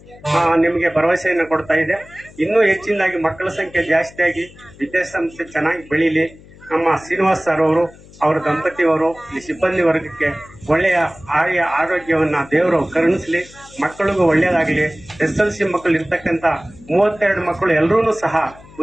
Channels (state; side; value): noise; left; hum, 22 dB below the sound